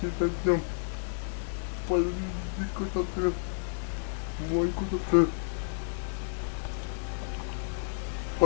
дойдем куда-то, мой куда-то,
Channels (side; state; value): right; silent; digital silence